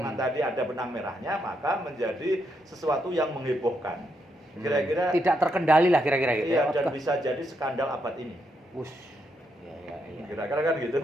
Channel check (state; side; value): normal; both; correlation 0.79